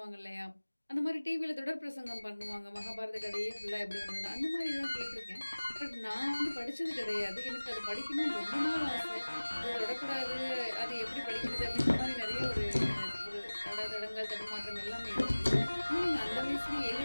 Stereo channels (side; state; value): both; inverted; correlation -1.00